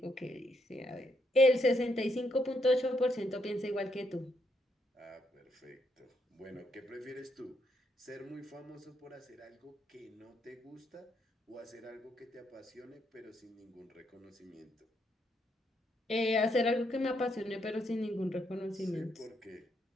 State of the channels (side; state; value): both; normal; correlation 0.76